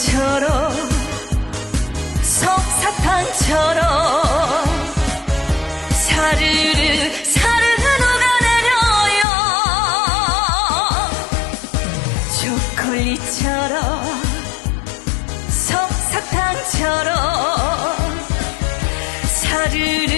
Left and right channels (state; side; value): drops out; right; at 9.2 s